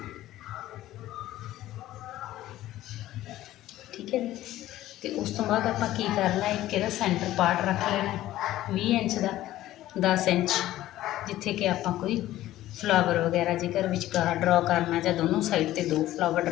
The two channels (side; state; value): right; quieter; 14.7 dB